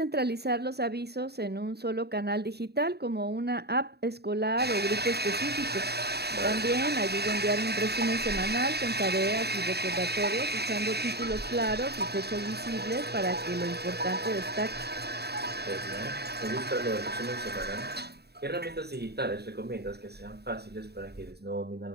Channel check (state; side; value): late; left; 0.47 ms